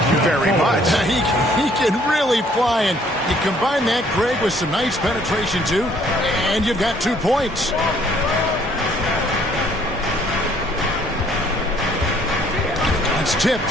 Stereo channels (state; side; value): normal; both; correlation 0.62